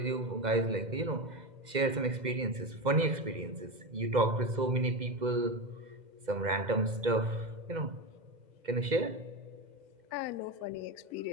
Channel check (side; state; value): left; late; 2.0 ms